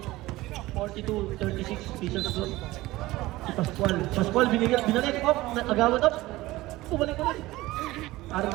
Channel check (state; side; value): quieter; left; 18.4 dB